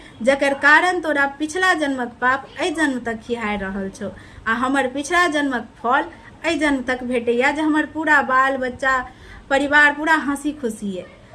जकर कारण तोरा पिछला जन्मक पाप एहि जन्म तक खिहारि रहल छौ। आ हमर पिछला जन्मक फल एहि जन्म तक भेटैया, जे हमर पूरा बाल बच्चा परिवार पूरा हंसी खुशी है।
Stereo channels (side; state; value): both; identical; correlation 1.00